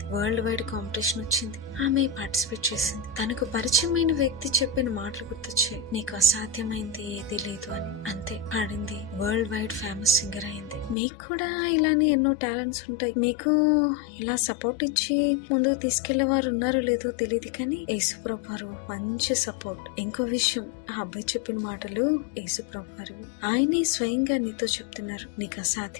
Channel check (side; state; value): right; drops out; at 11.0 s